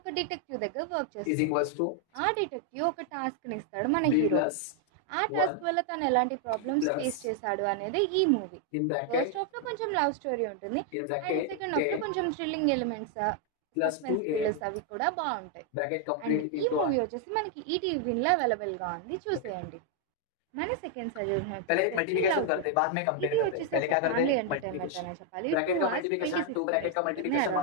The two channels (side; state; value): both; different; correlation 0.00